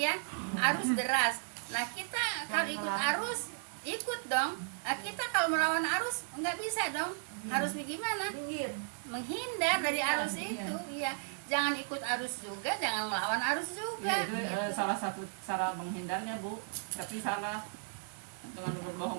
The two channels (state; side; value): silent; left; digital silence